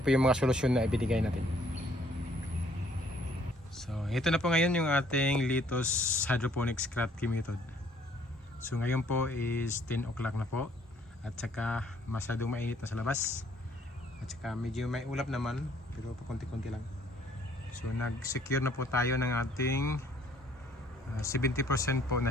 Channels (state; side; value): normal; both; correlation 0.62